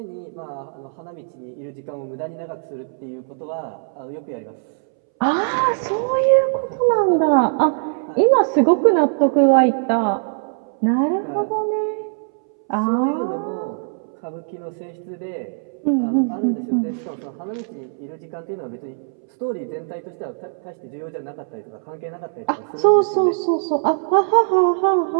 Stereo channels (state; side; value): silent; left; 63 dB below the other